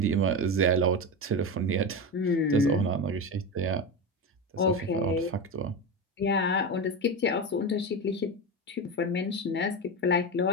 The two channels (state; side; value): normal; both; correlation 0.19